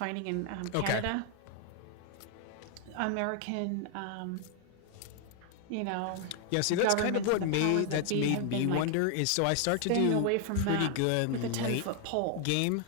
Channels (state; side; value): different; both; correlation 0.00